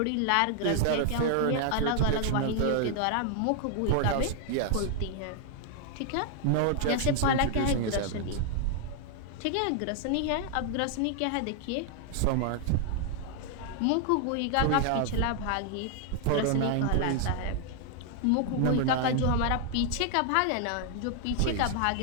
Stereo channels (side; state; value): both; different; correlation 0.00